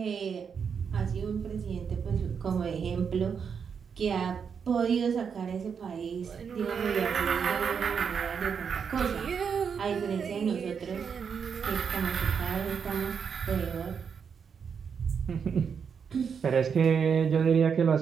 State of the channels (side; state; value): left; quieter; 6.6 dB